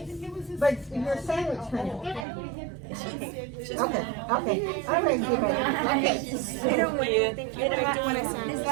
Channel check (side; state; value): left; drops out; at 2.2 s